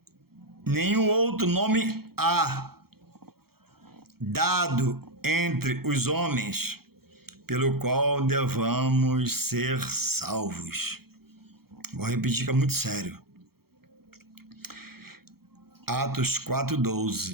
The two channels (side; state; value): left; late; 0.95 ms